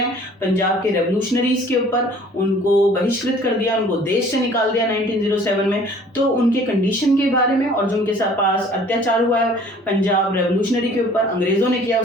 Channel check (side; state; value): both; normal; correlation 0.52